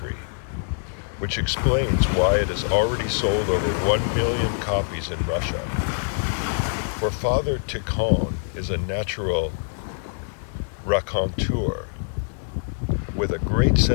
which explains why it has already sold over 1 million copies in Russia. For Father Tikhon is a natural raconteur with a great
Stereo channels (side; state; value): right; silent; digital silence